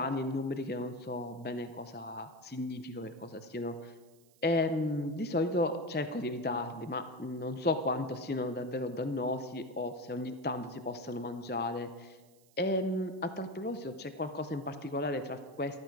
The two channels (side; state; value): right; noise; hiss, 29 dB below the sound